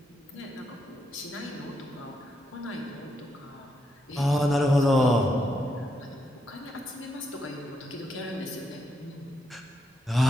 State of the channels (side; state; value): both; normal; correlation 0.80